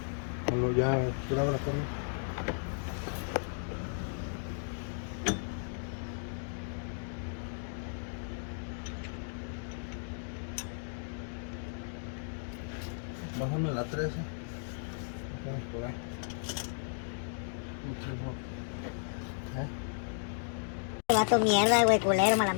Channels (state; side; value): silent; right; digital silence